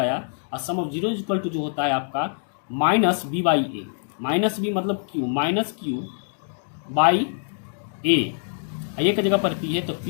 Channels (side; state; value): right; silent; digital silence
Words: और sum of zeros equal to जो होता है आपका -b/a, -b मतलब q, -q/a, a की जगह पर p है तो